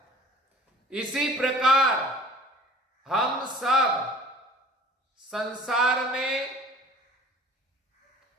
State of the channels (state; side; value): normal; both; correlation 0.48